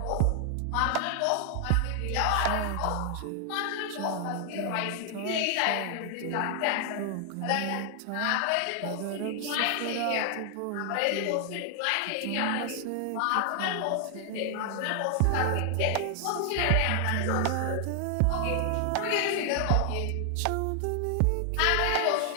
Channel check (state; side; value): different; both; correlation 0.00